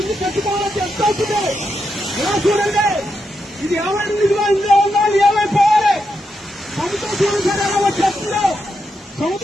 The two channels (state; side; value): normal; both; correlation 0.84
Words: ఇల్లు కట్టుకోవాలని ఎంత అవుతుంది? ఇలా చూడండి. ఇది ఏమైనా ఇదిగా ఇందులో ఉన్నా ఏమైపోవాలి? సముద్రం చూడండి సార్ ఎలా వచ్చేస్తుందో.